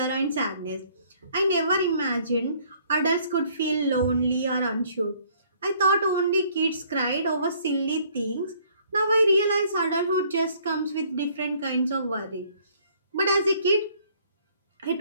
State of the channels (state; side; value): inverted; both; correlation -0.61